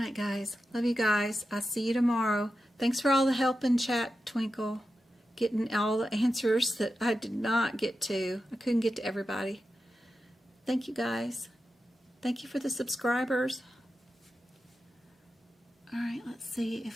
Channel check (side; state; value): both; normal; correlation 0.91